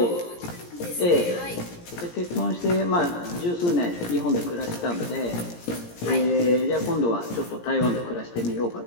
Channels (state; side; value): late; right; 17 ms